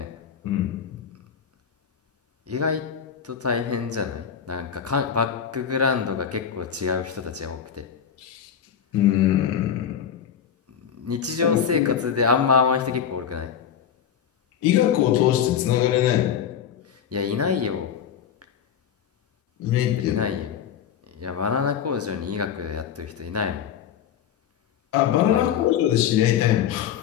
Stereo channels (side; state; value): right; quieter; 8.4 dB